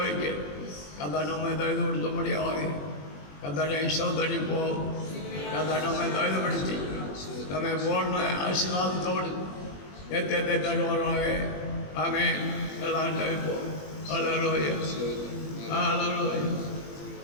கதை நம்மை தகுதி கொடுத்த முடியாது. கத்தனை சோதரிப்போம், கதை நம்மை தகுதிப்படுத்தி நம்மை போன ஆசீர்வாதத்தோடு நிறுத்தத்தை தருவாராக. ஆமென். எல்லாம் தவிப்போம். ஹல்லேலூயா, ஹல்லேலூயா,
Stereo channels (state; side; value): late; right; 21 ms